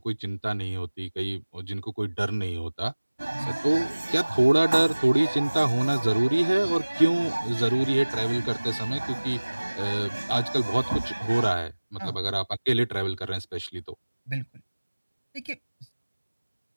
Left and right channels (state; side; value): inverted; both; correlation -1.00